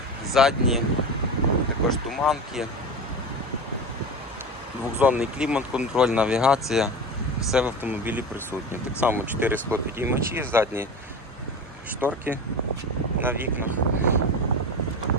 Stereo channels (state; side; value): normal; both; correlation 0.27